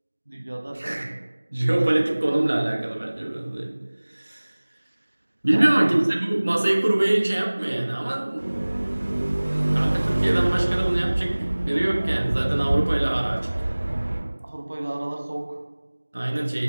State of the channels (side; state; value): both; inverted; correlation -1.00